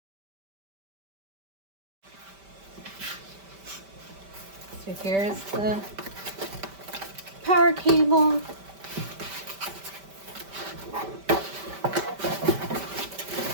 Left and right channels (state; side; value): late; left; 5.1 ms